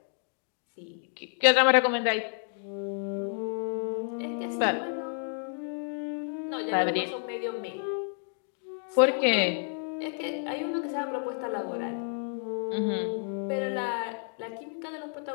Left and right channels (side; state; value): right; silent; 56 dB below the other